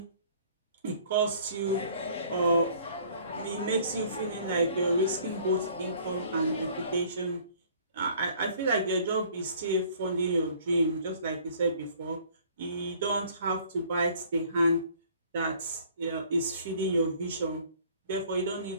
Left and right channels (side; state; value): both; inverted; correlation -0.55